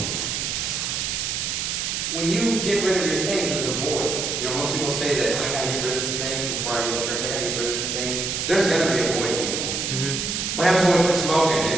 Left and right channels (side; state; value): right; noise; hiss, 1 dB below the sound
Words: When you get rid of your things, there's a void. You know, most people say that I gotta get rid of some things before I go to church. I gotta get rid of some things. There's gonna be a void, people. What happens when we quit smoking?